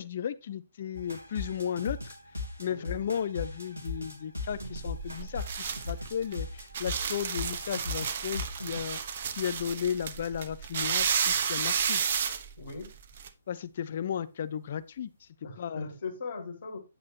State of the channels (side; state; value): both; inverted; correlation -0.60